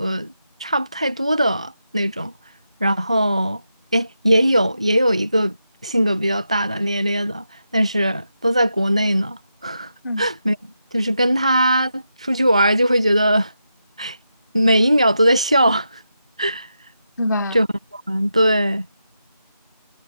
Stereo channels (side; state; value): both; inverted; correlation -0.86